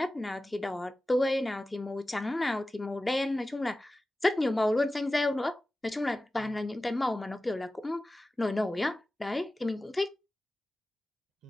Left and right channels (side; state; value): both; normal; correlation 0.96